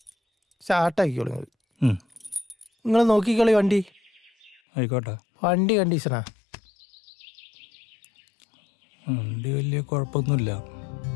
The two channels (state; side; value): drops out; right; at 4.6 s